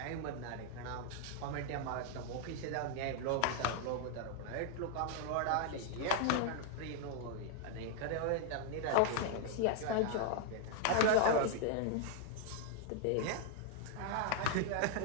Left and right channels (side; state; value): both; different; correlation 0.00